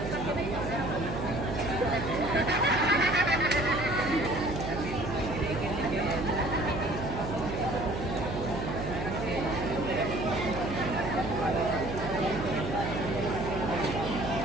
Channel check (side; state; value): right; noise; hum, 6 dB below the sound